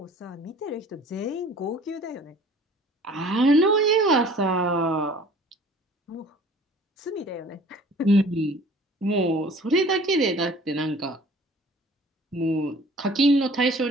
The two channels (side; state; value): both; normal; correlation 0.49